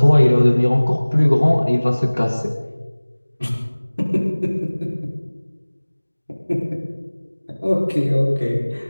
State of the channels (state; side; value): inverted; both; correlation -1.00